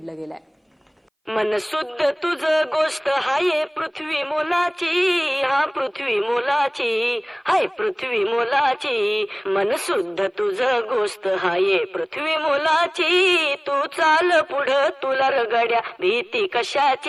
गेलं आहे. मन शुद्ध तुझ गोष्ट हाय पृथ्वी मोलाची, हा पृथ्वी मोलाची, हाय पृथ्वी मोलाची. मन शुद्ध तुझ गोष्ट हाय पृथ्वी मोलाची. तू चाल पुढं तुला रगड्या भीती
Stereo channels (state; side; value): identical; both; correlation 1.00